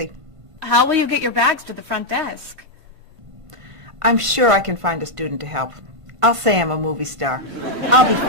How will you get your bags to the front desk? I'm sure I can find a student to help. I'll say I'm a movie star. I'll be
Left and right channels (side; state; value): left; late; 1.5 ms